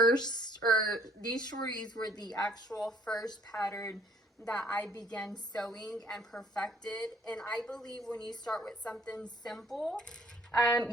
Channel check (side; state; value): both; normal; correlation 0.60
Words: or these shorties were the actual first pattern that I began sewing and perfected. And I believe when you start with something simple,